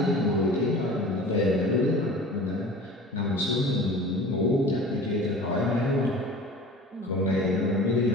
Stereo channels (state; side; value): normal; both; correlation 0.40